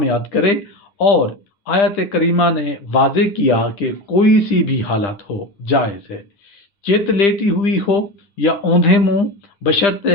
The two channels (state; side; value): late; right; 10 ms